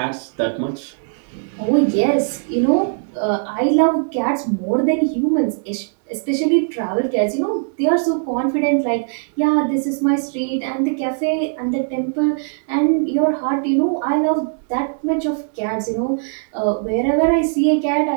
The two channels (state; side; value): silent; left; digital silence